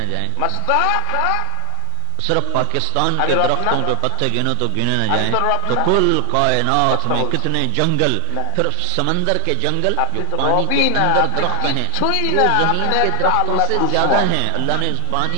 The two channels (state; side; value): different; both; correlation 0.00